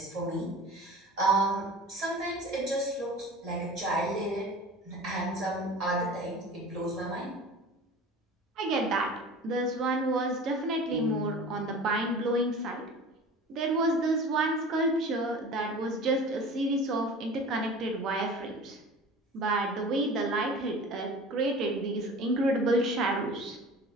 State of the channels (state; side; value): normal; both; correlation 0.39